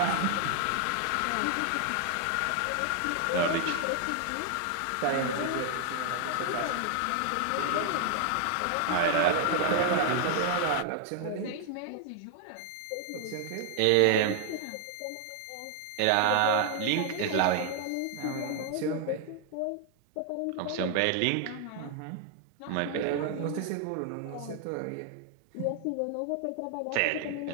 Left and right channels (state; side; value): different; both; correlation 0.00